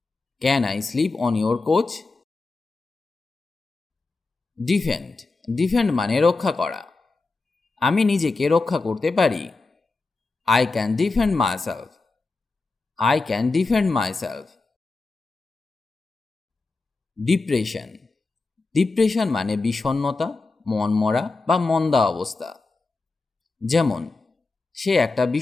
Can I sleep on your couch? Defend. Defend মানে রক্ষা করা। আমি নিজেকে রক্ষা করতে পারি। I can defend myself. I can defend myself. Depression. Depression মানে বিষণ্ণতা, মনমরা বা মন্দা অবস্থা। যেমন, সে একটা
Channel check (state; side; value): quieter; right; 3.7 dB